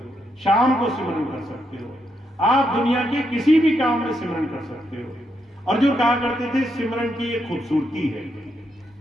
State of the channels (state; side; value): normal; both; correlation 0.80